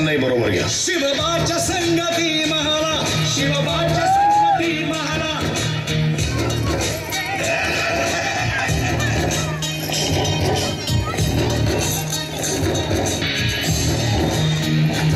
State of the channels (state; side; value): identical; both; correlation 1.00